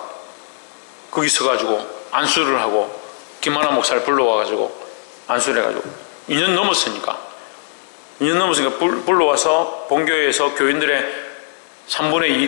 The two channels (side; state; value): right; silent; digital silence